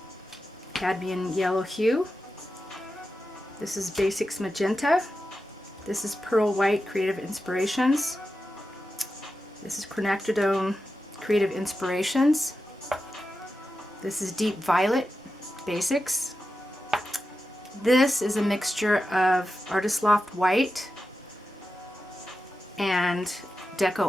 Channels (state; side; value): normal; both; correlation 0.91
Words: Cadmium Yellow Hue. This is Basics Magenta. This is Pearl White Creative Inspirations. This is Quinacridone Creative Inspirations. This is Deep Violet Basics. This is a mixture of Artist Loft White and